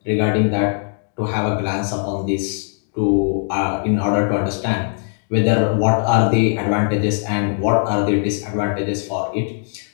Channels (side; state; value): right; silent; 61 dB below the other